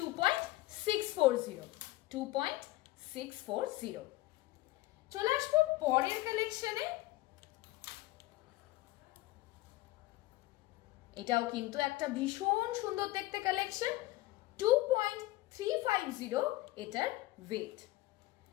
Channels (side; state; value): right; quieter; 18.1 dB